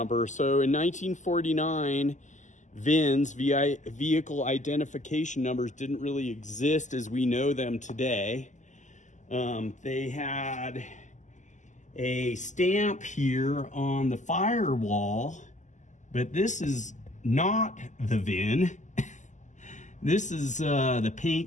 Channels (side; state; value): right; late; 0.35 ms